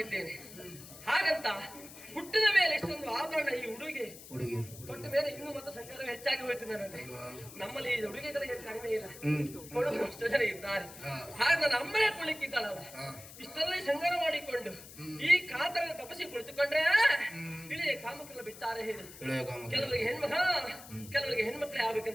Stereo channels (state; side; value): noise; left; hiss, 16 dB below the sound